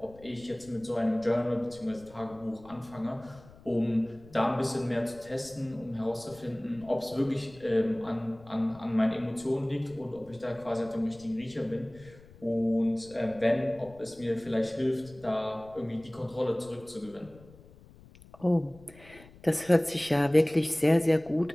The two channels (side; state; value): left; noise; rumble, 23 dB below the sound